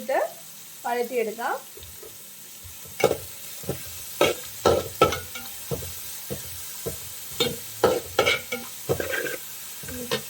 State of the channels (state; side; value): identical; both; correlation 1.00